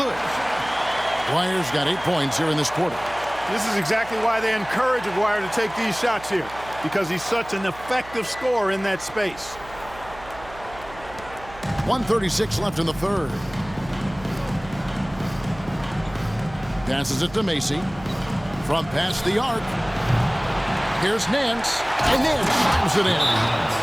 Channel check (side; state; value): right; noise; hum, 18 dB below the sound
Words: Aguirre's got 8 points here in this quarter. This is exactly why they encourage Aguirre to take these shots here, because he's such an effective scorer in that space. 1:36 left in the third. Passes it to Macy. From past the arc. Here's Nance, and Nance slams it in.